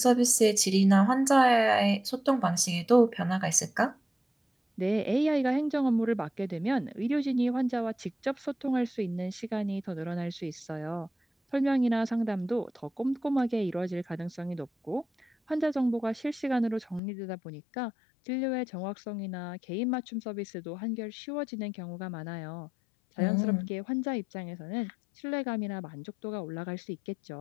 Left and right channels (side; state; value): right; drops out; at 17.0 s